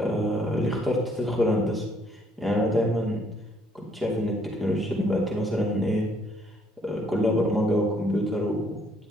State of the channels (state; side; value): normal; both; correlation 0.66